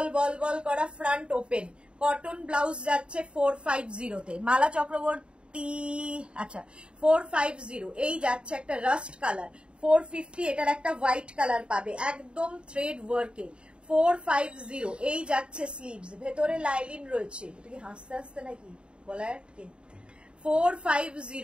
করা ফ্রন্ট ওপেন। কটন ব্লাউজ যাচ্ছে 450 তে। মালা চক্রবর্তী, আচ্ছা 450 এই যাচ্ছে একটা রাস্ট কালার। 450 এটার একটা হোয়াইট কালার পাবে, একদম থ্রেড ওয়ার্কে। 450 এই যাচ্ছে স্লিভস, ভেতরে লাইলিন রয়েছে। এটা কি হাসতে নাকি বলার কি?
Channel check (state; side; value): late; left; 0.054 ms